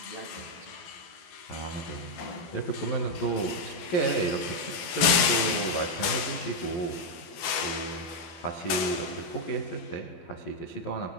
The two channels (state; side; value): late; right; 12 ms